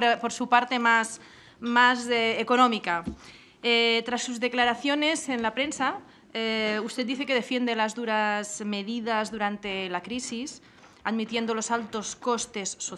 su parte más económica. Tras sus declaraciones en la prensa, usted dice que defiende las duras medidas durante la crisis, admitiendo los altos costes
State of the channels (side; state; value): both; identical; correlation 1.00